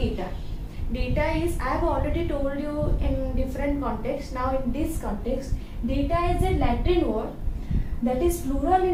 Data is, I have already told you in different contexts. Now in this context, data is a Latin word that is plural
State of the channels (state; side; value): identical; both; correlation 1.00